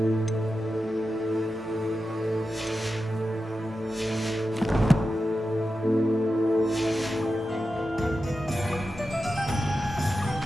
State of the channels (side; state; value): both; normal; correlation 0.91